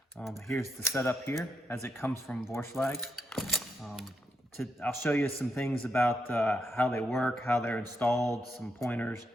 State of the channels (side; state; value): both; normal; correlation 0.81